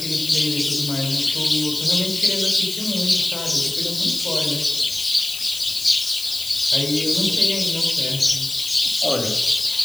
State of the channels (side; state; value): left; noise; hiss, 9 dB below the sound